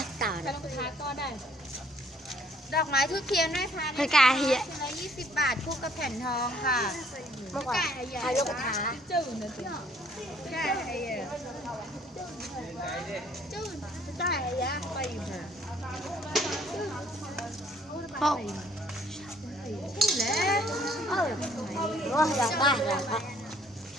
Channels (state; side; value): normal; both; correlation 0.62